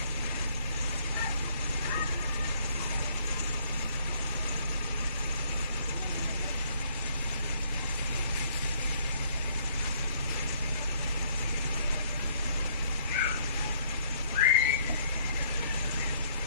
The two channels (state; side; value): inverted; both; correlation -0.64